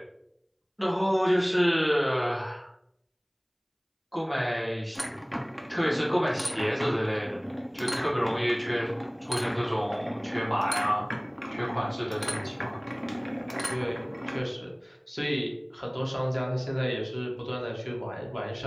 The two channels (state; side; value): identical; both; correlation 1.00